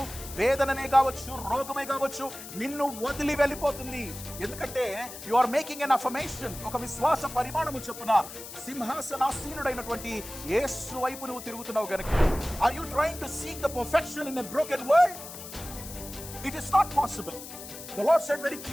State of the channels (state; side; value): noise; left; hiss, 12 dB below the sound